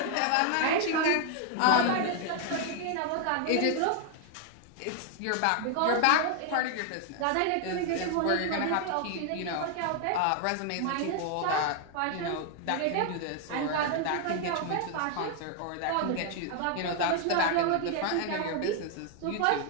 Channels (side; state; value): both; different; correlation 0.00